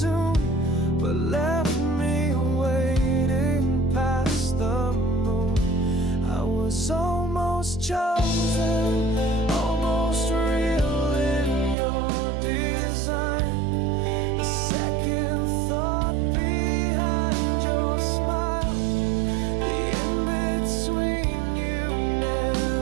but left me waiting past the moon. I was almost chosen, almost real in your design. The second thought behind your smile, the in-between you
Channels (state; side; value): drops out; left; at 11.8 s